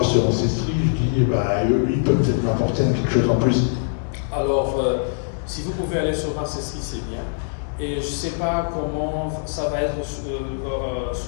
sur Ancestry, je dis eux, ils peuvent peut-être m'apporter quelque chose en plus? Alors, si vous pouvez aller sur Ancestry, c'est bien. Et je ne sais pas comment ça va être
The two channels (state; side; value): silent; right; digital silence